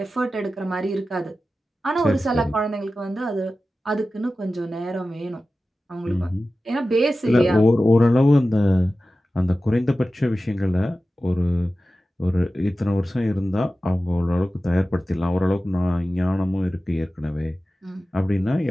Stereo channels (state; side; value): normal; both; correlation 0.95